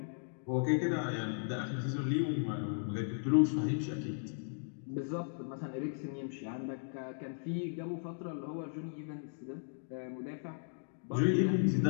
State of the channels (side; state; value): right; silent; digital silence